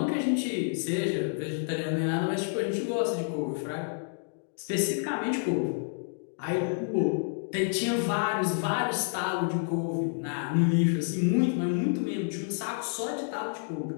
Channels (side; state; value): right; silent; digital silence